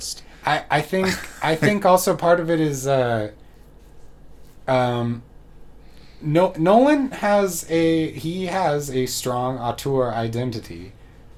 I think also part of it is Nolan has a strong auteur identity,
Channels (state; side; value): identical; both; correlation 1.00